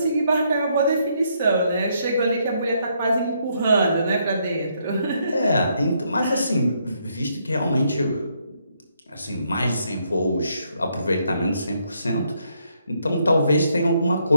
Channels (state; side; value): inverted; both; correlation -0.74